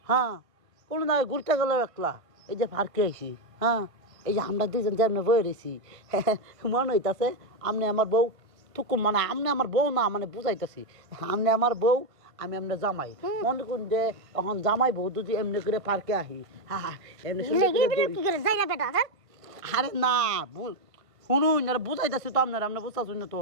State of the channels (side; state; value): left; late; 1.5 ms